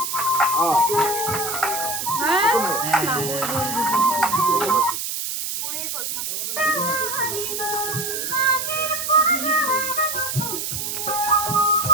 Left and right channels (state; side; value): noise; right; hiss, 3 dB below the sound